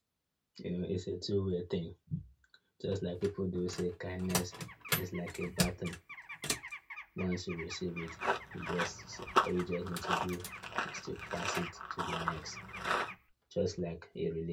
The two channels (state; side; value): identical; both; correlation 1.00